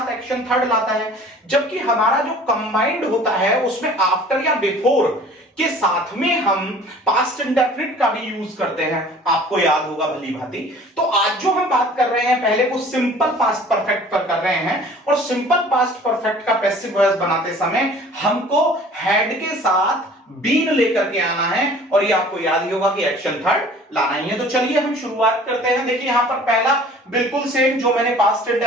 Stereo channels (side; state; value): both; normal; correlation 0.48